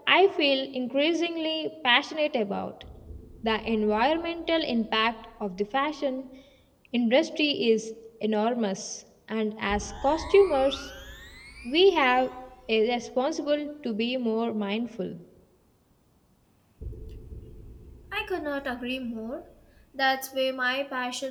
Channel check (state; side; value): identical; both; correlation 1.00